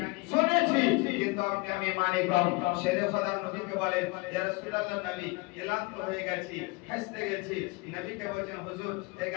শুনেছি, কিন্তু আমি মানে কম। শেরে খোদা নবীকে বলেন ইয়া রাসূলুল্লাহ নবী ক্লান্ত হয়ে গেছি, হাসতে গেছি। নবীকে বলেন হুজুর এই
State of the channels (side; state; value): right; quieter; 26.6 dB